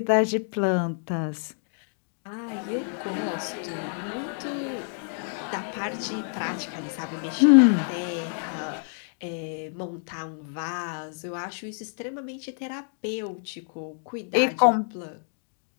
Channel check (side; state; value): right; silent; 60 dB below the other